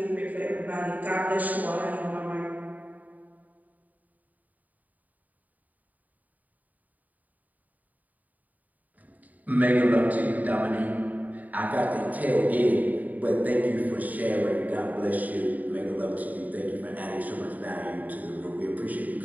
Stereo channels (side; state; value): left; late; 0.077 ms